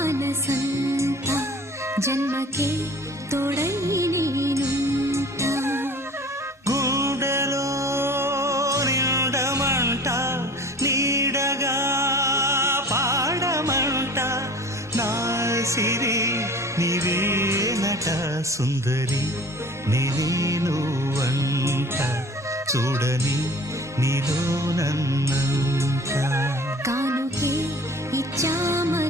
జన్మకే తోడై నేనుంట గుండెలో నిండమంట నీడగా పాడమంట నా సిరి నీవేనట సుందరి నీనువంట చూడని నీలో నన్నంత కానుకే ఇచ్చా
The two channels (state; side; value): normal; both; correlation 0.44